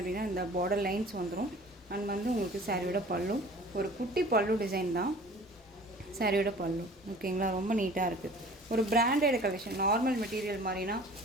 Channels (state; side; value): normal; both; correlation 0.47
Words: அப்படின்னா இந்த பார்டர் லைன்ஸ் வந்துடும். அண்ட் வந்து உங்களுக்கு சாரியோட பல்லு ஒரு குட்டி பல்லு டிசைன் தான் சாரியோட பல்லு. ஓகேங்களா? ரொம்ப நீட்டாக இருக்குது. ஒரு பிராண்டட் கலெக்ஷன். நார்மல் மெட்டீரியல் மாதிரினா